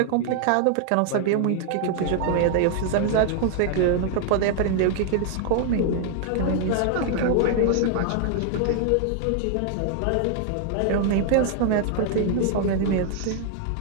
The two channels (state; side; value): different; both; correlation 0.00